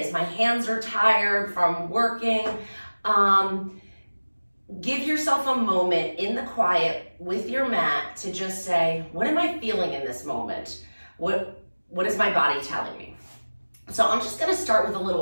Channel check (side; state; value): both; inverted; correlation -1.00